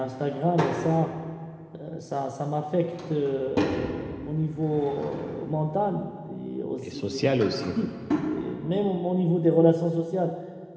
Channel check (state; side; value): identical; both; correlation 1.00